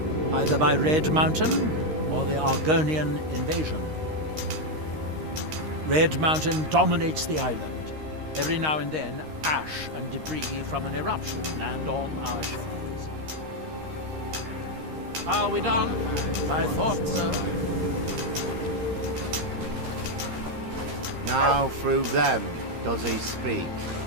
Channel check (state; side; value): late; left; 13 ms